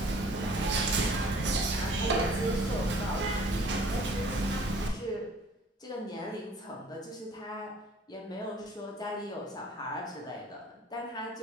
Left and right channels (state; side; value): normal; both; correlation 0.53